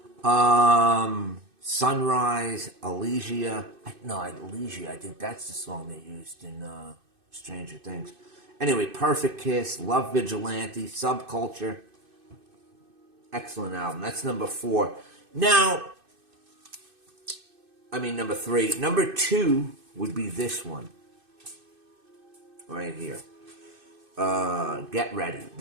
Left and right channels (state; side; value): late; left; 2.6 ms